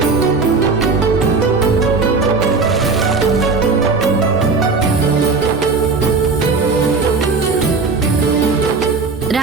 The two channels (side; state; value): left; quieter; 4.2 dB